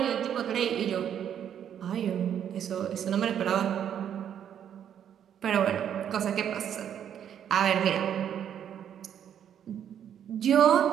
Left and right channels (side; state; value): left; quieter; 9.3 dB